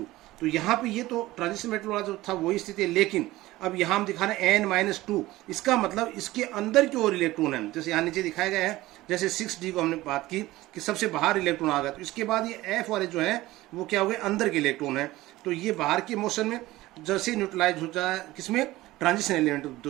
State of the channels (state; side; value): quieter; left; 17.7 dB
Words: तो यहाँ पे ये तो ट्रांजिशन मेटल वाला जो था वही स्थिति है, लेकिन अब यहाँ हम दिखा रहे हैं n-2, इसका मतलब इसके अंदर की ओर इलेक्ट्रॉन है, जैसे यहाँ नीचे दिखाया गया है। जैसे 6d को हमने बात की कि सबसे बाहर इलेक्ट्रॉन आ गया, तो इसके बाद ये f वाले जो है वो क्या हो गए, अंदर के इलेक्ट्रॉन है। तो ये बाहर के मोशन में जैसे न्यूट्रलाइज हो जाए किसमें, ट्रांजिशन एलिमेंट,